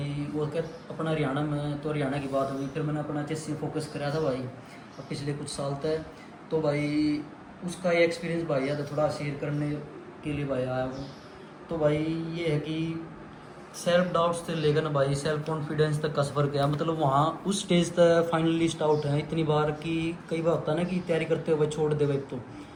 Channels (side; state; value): both; identical; correlation 1.00